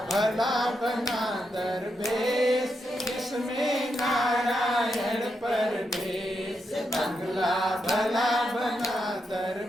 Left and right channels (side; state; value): both; normal; correlation 0.83